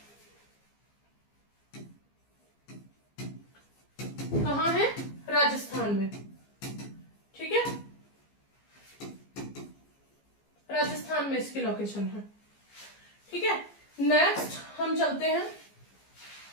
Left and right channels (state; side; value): late; right; 15 ms